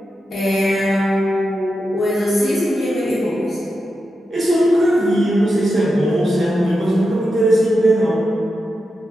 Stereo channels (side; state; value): both; normal; correlation 0.89